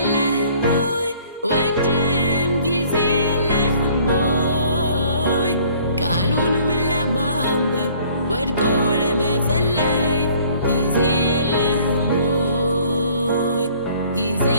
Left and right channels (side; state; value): both; inverted; correlation -0.56